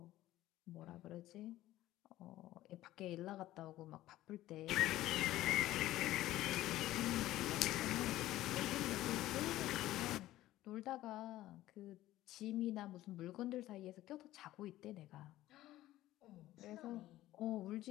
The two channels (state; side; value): quieter; right; 15.3 dB